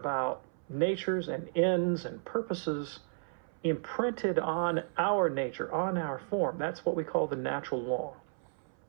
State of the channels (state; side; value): silent; left; 56 dB below the other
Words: natures and ends and purposes imprinted on our nature, on our form, that's what we call the natural law.